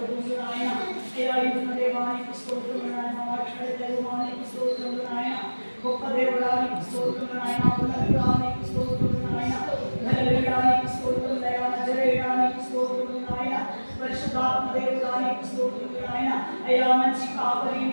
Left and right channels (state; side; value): inverted; both; correlation -1.00